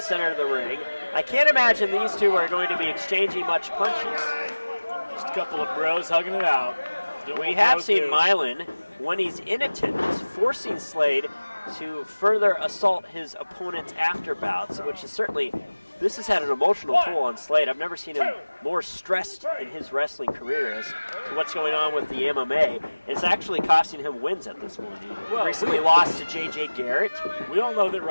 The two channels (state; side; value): inverted; both; correlation -1.00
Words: of the ring. I can't imagine these two are going to be exchanging much punches. Just a couple of bros hugging it out. We have seen Milan, when he's in attendance, forcing Slade to further assault his opponent's after bouts, which is certainly, this has had an emotional toll on Slade. I've never seen him more stressed in his wrestling career as to what's going on with the MMA. It's actually costing him wins at this point. He recently lost to J.J. Garrett. We all know that